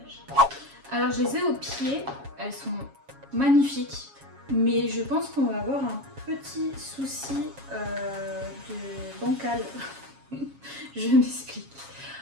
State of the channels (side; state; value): left; late; 7.3 ms